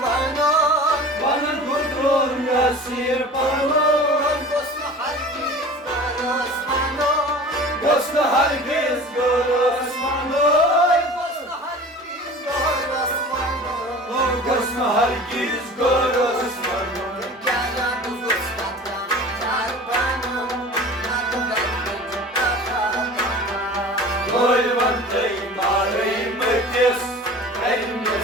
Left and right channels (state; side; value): normal; both; correlation 0.40